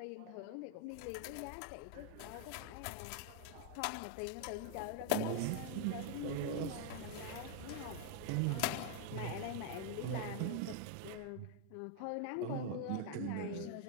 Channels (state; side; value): different; both; correlation 0.00